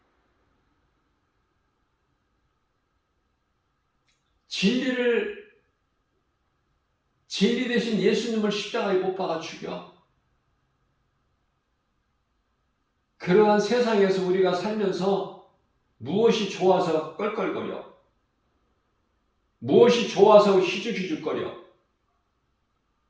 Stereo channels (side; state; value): both; identical; correlation 1.00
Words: 진리 대신 예수님을 십자가에 못 박아 죽여. 그러한 세상에서 우리가 살면서 무엇이 좋아서 껄껄거려? 무엇이 좋아서 희죽희죽거려?